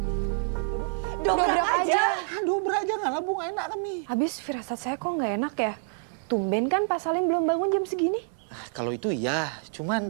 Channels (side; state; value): left; silent; 60 dB below the other